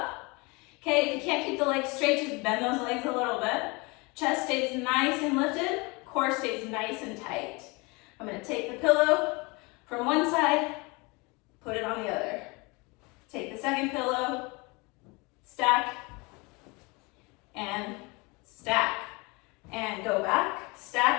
Okay, if you can't keep the legs straight, just bend those legs a little bit. Chest stays nice and lifted, core stays nice and tight. I'm gonna take the pillow from one side, put it on the other. Take the second pillow, stack, and stack. And go back,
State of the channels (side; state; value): right; quieter; 26.9 dB